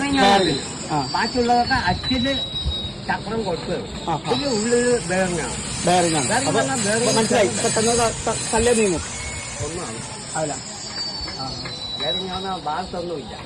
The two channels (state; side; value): identical; both; correlation 1.00